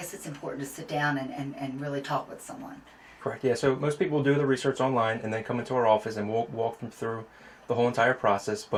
it's important to sit down and really talk with someone. Correct, yeah. So most people do the research online and then come into our office and we'll walk them through the whole entire process.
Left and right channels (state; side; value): identical; both; correlation 1.00